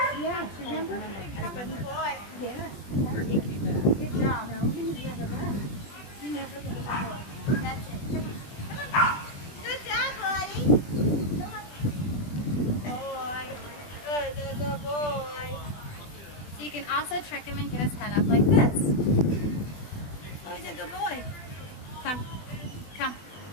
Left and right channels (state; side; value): late; right; 20 ms